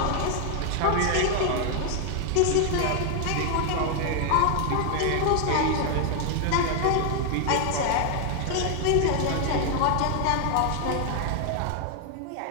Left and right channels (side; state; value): both; different; correlation 0.00